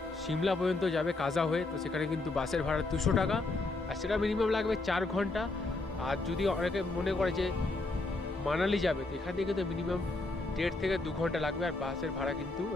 সিমলা পর্যন্ত যাবে কাজা হয়ে, তো সেখানে কিন্তু বাসের ভাড়া 200 টাকা। আর সেটা মিনিমাম লাগবে 4 ঘন্টা। আর যদি অনেকে মনে করে যে মানালি যাবে, তো এখান থেকে কিন্তু মিনিমাম 1.5 থেকে 2 ঘন্টা লাগবে। আর বাসের ভাড়া কিন্তু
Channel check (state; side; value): quieter; right; 3.2 dB